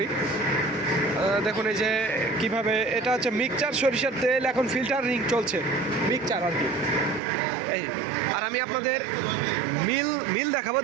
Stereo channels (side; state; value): left; drops out; at 7.2 s